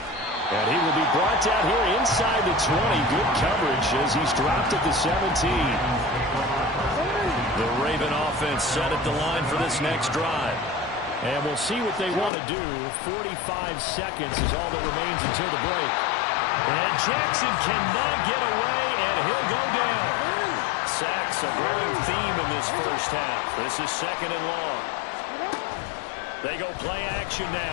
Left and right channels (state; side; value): drops out; right; at 12.3 s